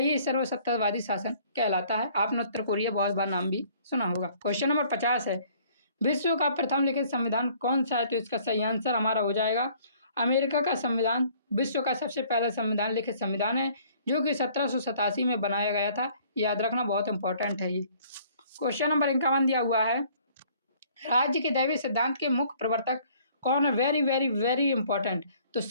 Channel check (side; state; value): both; inverted; correlation -0.58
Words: सर्वसत्तावादी शासन कहलाता है। आपने उत्तर कोरिया बहुत बार नाम भी सुना होगा। क्वेश्चन नंबर 50 है, विश्व का प्रथम लिखित संविधान कौन सा है? तो इसका सही आंसर हमारा हो जाएगा अमेरिका का संविधान विश्व का सबसे पहला संविधान लिखित संविधान है, जो कि 1787 में बनाया गया था। याद रखना बहुत इंपॉर्टेंट है ये। क्वेश्चन नंबर 51 दिया हुआ है, राज्य के दैवीय सिद्धांत के मुख्य प्रवर्तक कौन है? Very very very important. तो